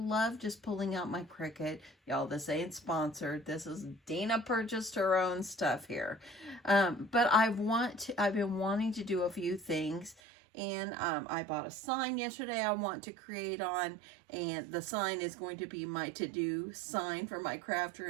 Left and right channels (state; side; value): drops out; left; at 10.2 s